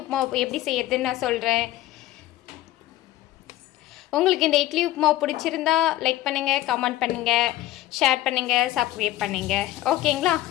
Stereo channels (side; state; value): right; quieter; 15.2 dB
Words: எப்படி செய்யறதுன்னு நான் சொல்கிறேன். உங்களுக்கு இந்த இட்லி உப்புமா பிடிச்சிருந்தா லைக் பண்ணுங்கள், கமெண்ட் பண்ணுங்கள், ஷேர் பண்ணுங்கள், சப்ஸ்கிரைப் பண்ணுங்கள். ஓகேங்களா?